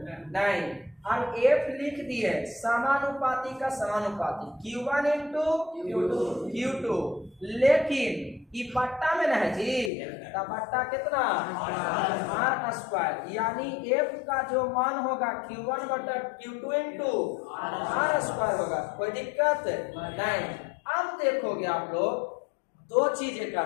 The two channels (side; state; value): right; drops out; at 9.9 s